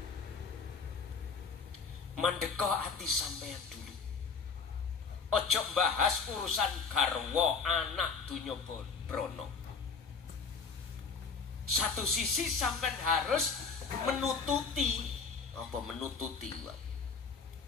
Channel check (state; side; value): quieter; right; 5.2 dB